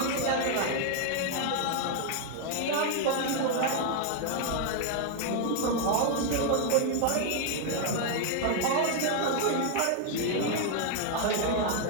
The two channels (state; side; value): different; both; correlation 0.00